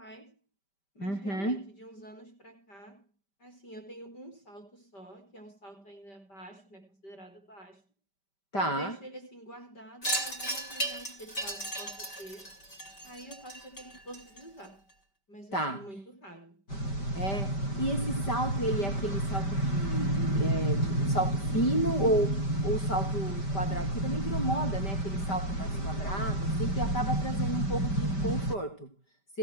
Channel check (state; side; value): late; right; 5.1 ms